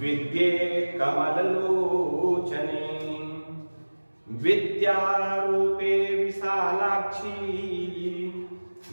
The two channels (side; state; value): both; inverted; correlation -1.00